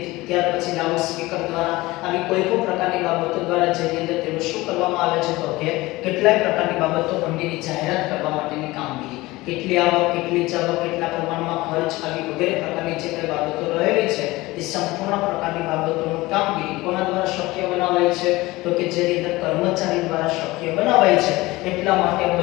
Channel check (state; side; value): quieter; right; 20.1 dB